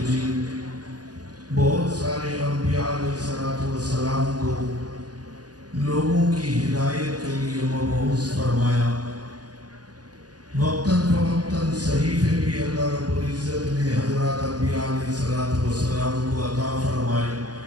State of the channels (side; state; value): left; late; 0.69 ms